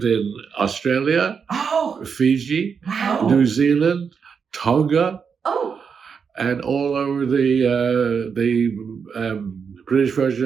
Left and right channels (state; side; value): quieter; left; 6.3 dB